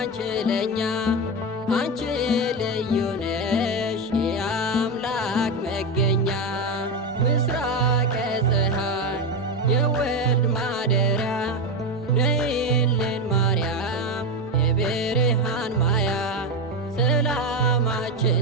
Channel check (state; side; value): normal; both; correlation 0.14